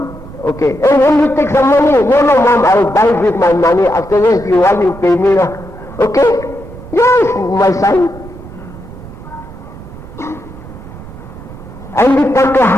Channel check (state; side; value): noise; right; rumble, 16 dB below the sound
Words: Okay. Hey, will you take some money? No, mom, I'll buy with my money. Afterwards, you want to pay me. Okay? Yes, my son. And we talk